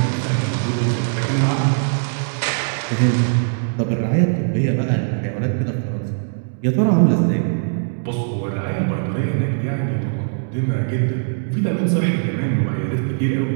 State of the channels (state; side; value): silent; left; digital silence